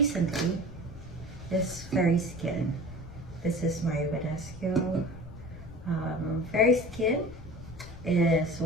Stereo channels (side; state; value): left; noise; rumble, 14 dB below the sound